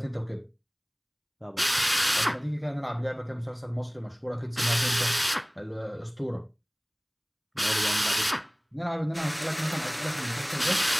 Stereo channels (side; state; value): both; identical; correlation 1.00